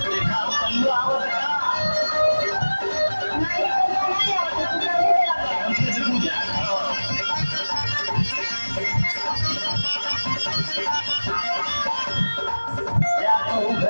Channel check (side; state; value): both; inverted; correlation -1.00